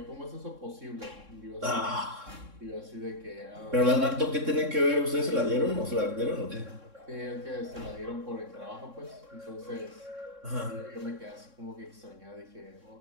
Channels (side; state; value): left; late; 3.6 ms